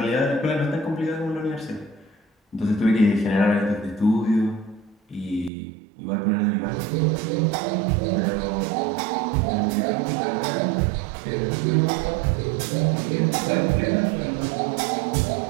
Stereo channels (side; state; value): left; drops out; at 5.5 s